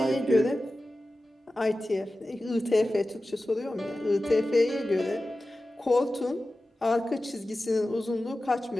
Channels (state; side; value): normal; both; correlation 0.95